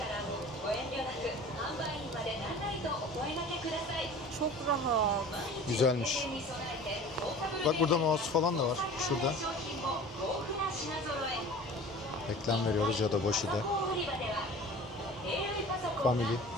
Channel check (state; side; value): normal; both; correlation 0.41